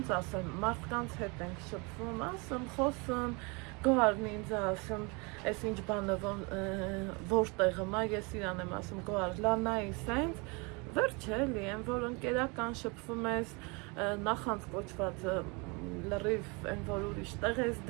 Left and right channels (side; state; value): left; quieter; 29.6 dB